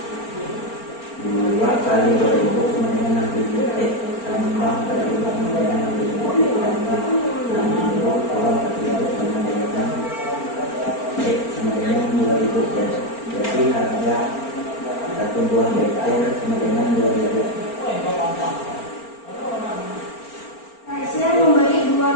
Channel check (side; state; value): right; late; 4.4 ms